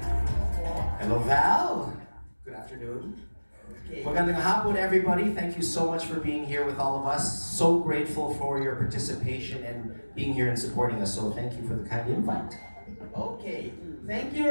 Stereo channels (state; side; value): inverted; both; correlation -1.00